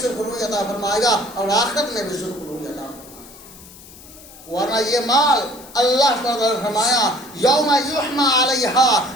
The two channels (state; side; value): noise; left; hiss, 20 dB below the sound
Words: سرخروئی عطا فرمائے گا اور آخرت میں بھی سرخروئی عطا فرمائے گا۔ ورنہ یہ مال اللہ تعالیٰ نے فرمایا یوم یحمى علیہا،